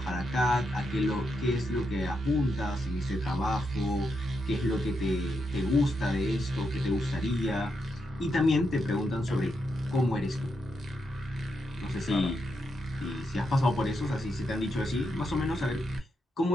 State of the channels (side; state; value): both; normal; correlation 0.83